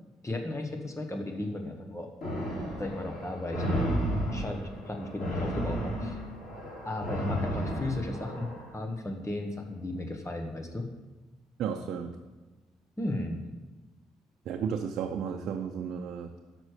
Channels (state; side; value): normal; both; correlation 0.72